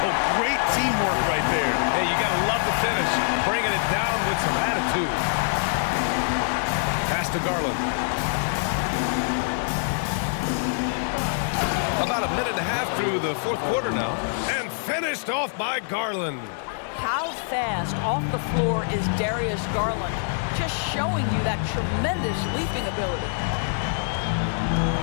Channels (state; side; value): silent; right; 62 dB below the other